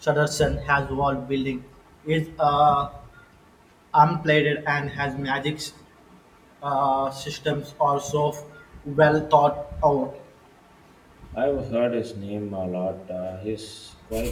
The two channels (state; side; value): identical; both; correlation 1.00